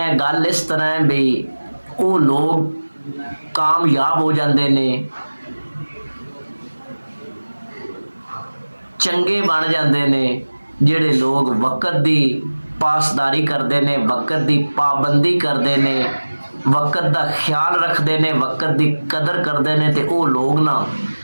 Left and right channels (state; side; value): inverted; both; correlation -1.00